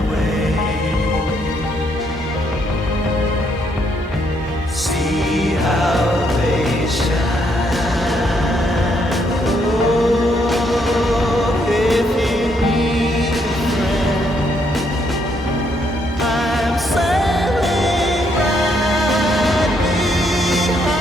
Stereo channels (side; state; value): both; normal; correlation 0.73